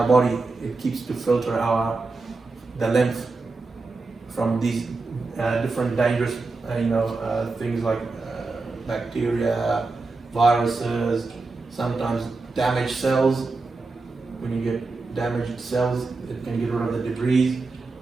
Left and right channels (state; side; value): quieter; left; 3.7 dB